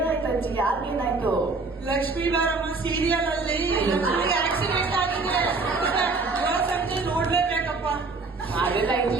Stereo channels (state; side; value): quieter; left; 3.9 dB